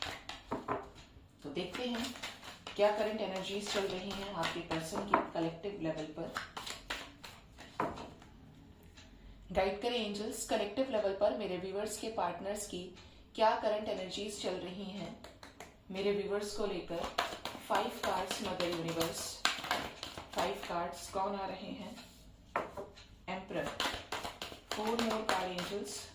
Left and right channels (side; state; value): both; identical; correlation 1.00